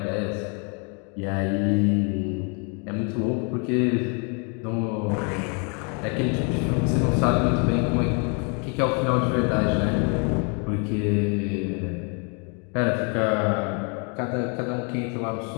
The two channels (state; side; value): quieter; right; 36.4 dB